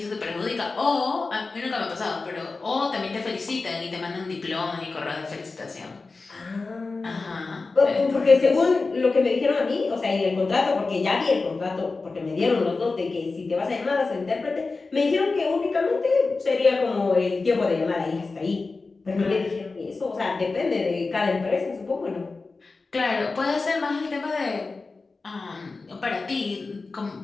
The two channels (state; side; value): quieter; right; 3.9 dB